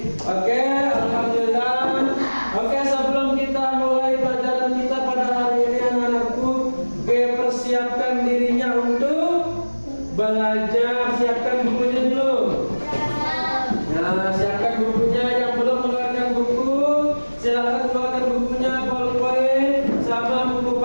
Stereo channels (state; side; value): inverted; both; correlation -1.00